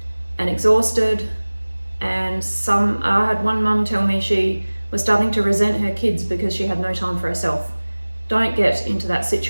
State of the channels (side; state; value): both; inverted; correlation -1.00